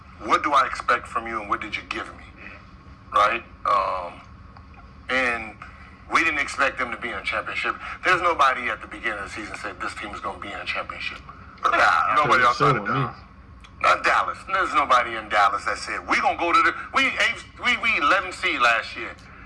what do I expect from you and what did you give me, right? And we didn't expect them to be in a championship. There's nobody at the beginning of the season said this team is going to be in a championship. Nobody outside of Dallas. Not Dallas. There's nobody in Dallas that said we're going to go to we 11 seed last year,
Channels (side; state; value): both; identical; correlation 1.00